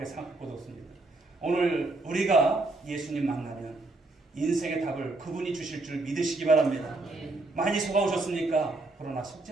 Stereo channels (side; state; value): left; quieter; 3.1 dB